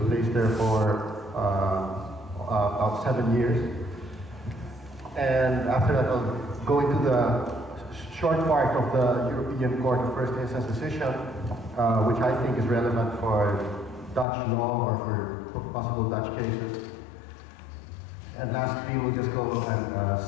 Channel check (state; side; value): drops out; right; at 14.2 s